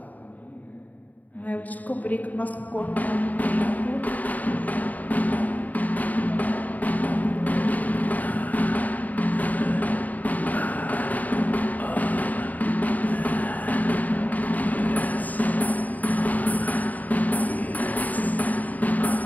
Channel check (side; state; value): right; late; 0.077 ms